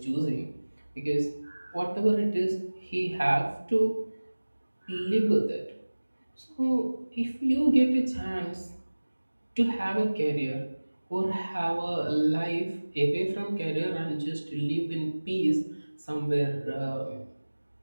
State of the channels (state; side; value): inverted; both; correlation -1.00